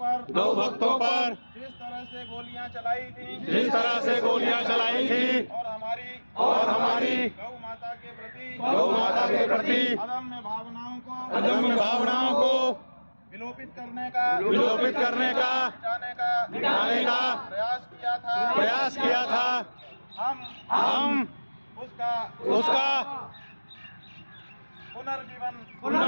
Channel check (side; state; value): both; inverted; correlation -1.00